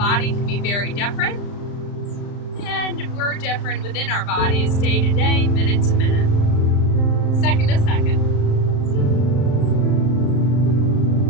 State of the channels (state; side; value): late; right; 35 ms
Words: can be very different, and we're different within our bodies day to day, minute to minute, second to second.